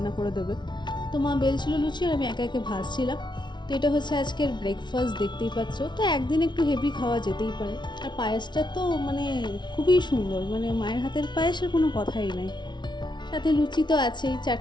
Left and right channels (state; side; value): late; right; 0.21 ms